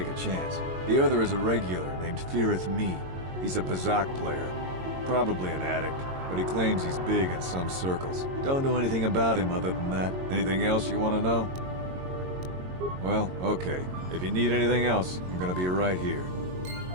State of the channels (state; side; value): late; left; 22 ms